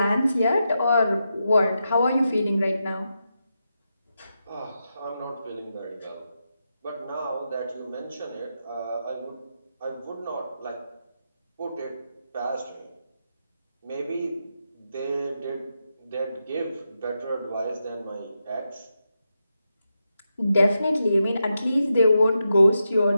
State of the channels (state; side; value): inverted; both; correlation -0.87